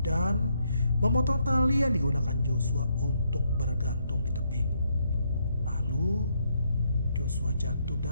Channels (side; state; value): both; inverted; correlation -0.75